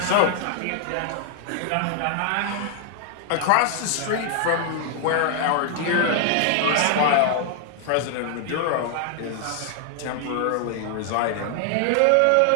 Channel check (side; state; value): both; different; correlation 0.00